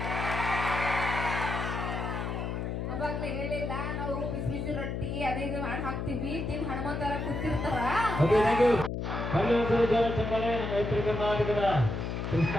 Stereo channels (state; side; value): noise; left; hum, 3 dB below the sound